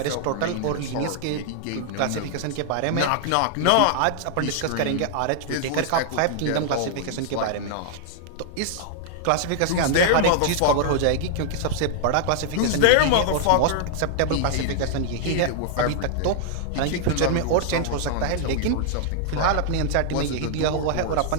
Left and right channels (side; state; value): both; different; correlation 0.00